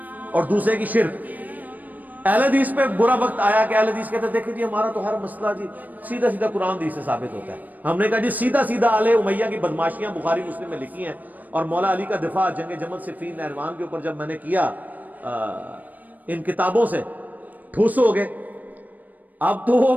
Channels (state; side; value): late; left; 0.082 ms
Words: اور دوسرے کی شرک. اہل حدیث پہ برا وقت آیا کہ اہل حدیث کہتے ہیں دیکھیں جی ہمارا تو ہر مسئلہ جی سیدھا سیدھا قرآن حدیث سے ثابت ہوتا ہے. ہم نے کہا جی سیدھا سیدھا آل امیہ کی بدماشیاں بخاری مسلم میں لکھی ہیں, اور مولا علی کا دفاع جنگ جمل صفین نہروان کے اوپر جب میں نے کیا ان کتابوں سے, ٹھوس ہو گئے. اب تو وہ